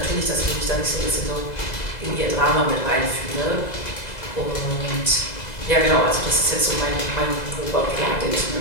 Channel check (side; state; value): right; late; 2.0 ms